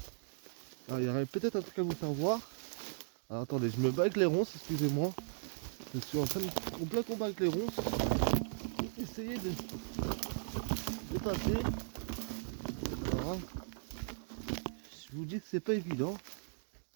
Alors, il y aurait peut-être un truc à vous faire voir. Alors, attendez, je me bats avec les ronces, excusez-moi. Je suis en plein combat avec les ronces. Essayez de passer. Alors, hein, je vous dis que c'est pas évident.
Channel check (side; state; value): left; silent; digital silence